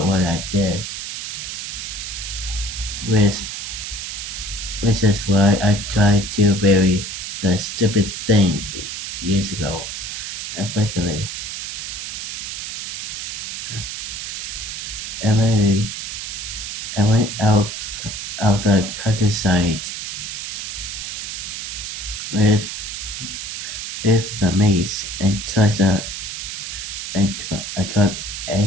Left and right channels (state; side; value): noise; right; hiss, 6 dB below the sound